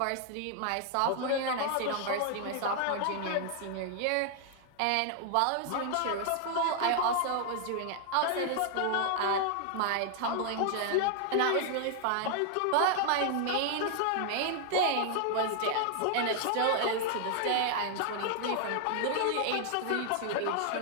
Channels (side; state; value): both; different; correlation 0.00